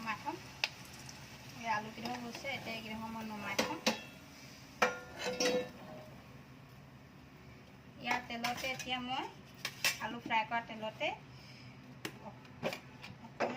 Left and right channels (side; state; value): both; identical; correlation 1.00